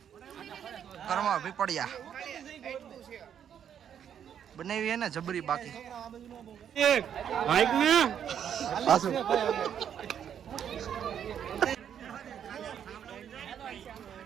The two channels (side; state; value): left; quieter; 8.9 dB